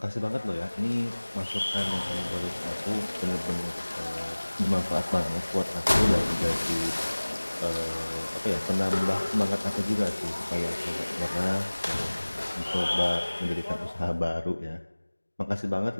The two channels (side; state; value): both; inverted; correlation -1.00